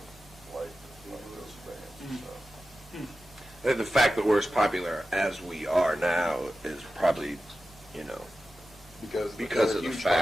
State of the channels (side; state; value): both; normal; correlation 0.93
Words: liked those bands and stuff. The fact that we're as popular as we are now is probably, because of the huge